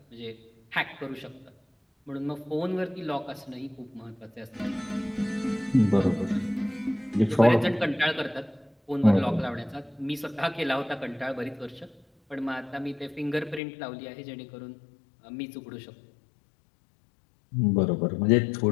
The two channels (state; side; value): drops out; right; at 13.6 s